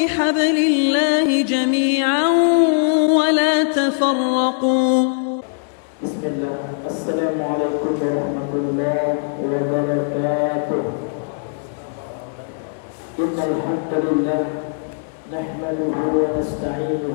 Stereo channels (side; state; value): right; silent; digital silence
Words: الله جميعا ولا تفرقوا. بسم الله. السلام عليكم ورحمة الله وبركاته. إن الحمد لله نحمده